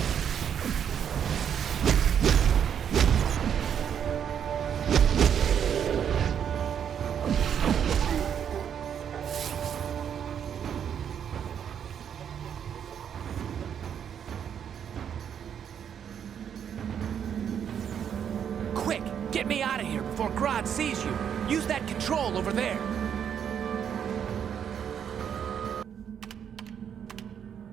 Get me out of here before Grodd sees you. Use that control over there.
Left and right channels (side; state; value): left; quieter; 8.4 dB